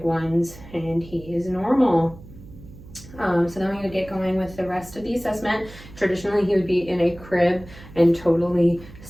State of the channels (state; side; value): noise; right; hum, 18 dB below the sound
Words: ones, and he is normal. So then we're going to get going with the rest of the assessment. Traditionally, he would be in a crib and totally